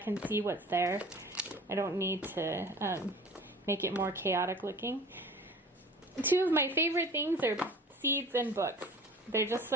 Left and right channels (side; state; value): both; normal; correlation 0.43